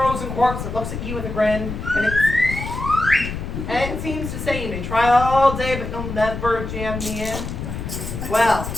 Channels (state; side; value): noise; left; rumble, 6 dB below the sound